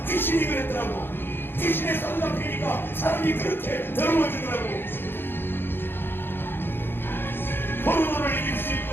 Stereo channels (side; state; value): right; late; 0.10 ms